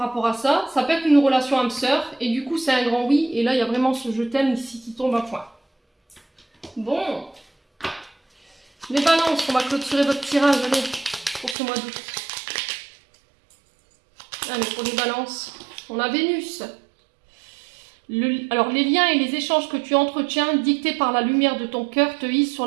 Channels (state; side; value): drops out; left; at 11.6 s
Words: à ça. Ça peut être une relation âme-sœur. Et du coup, c'est un grand oui. Et là, il y a vraiment ce je t'aime ici qui tombe à point. Bon. Les balances, on va clôturer votre tirage. Allez, pour ce mois d'août. Allez, pour les balances, on a Vénus. Alors, les liens et les échanges que tu entretiens, dictés par la lumière de ton cœur, te hissent